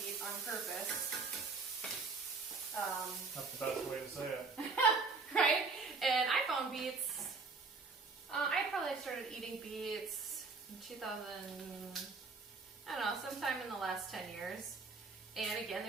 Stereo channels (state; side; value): quieter; left; 4.3 dB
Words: beet on purpose. That's the best way to say it. Right? And I found beets. I probably started eating beets in 2000, I don't know, sometime in the last 10 years. And again,